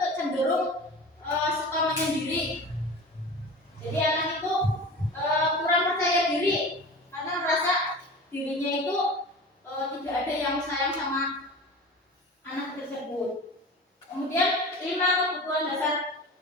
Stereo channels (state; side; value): normal; both; correlation 0.35